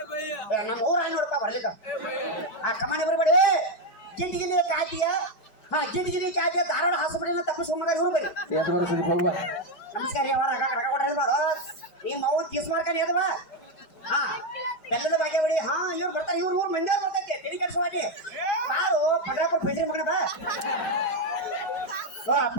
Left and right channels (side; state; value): right; late; 5.1 ms